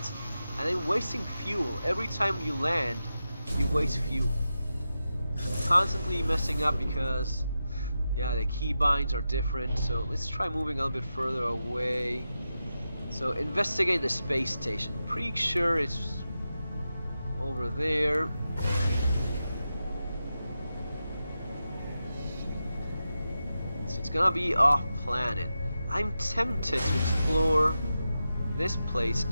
and I'm wasting fuel. Every time you land, you waste fuel. Constantly messing up because... yeah, the keybinds are different, so let's try moving a little bit further away. So, investigate the space station. Pretty sure it's over there. So it's gonna be off planet. I'm tempted to explore this place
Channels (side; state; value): both; inverted; correlation -0.90